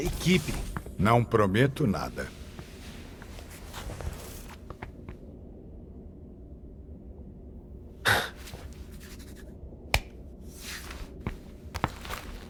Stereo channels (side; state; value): both; identical; correlation 1.00